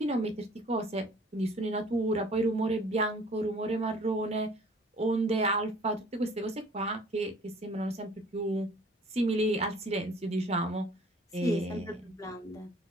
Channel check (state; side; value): normal; both; correlation 0.52